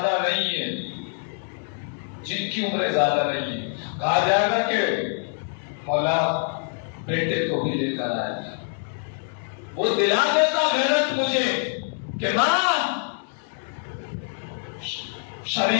نہیں ہے، جن کی عمریں زیادہ نہیں ہے کہا جائے گا کہ مولا بیٹے کو بھی لے کر آئے گا. وہ دلا دیتا غیرت مجھے کہ ماں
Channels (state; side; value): silent; right; 62 dB below the other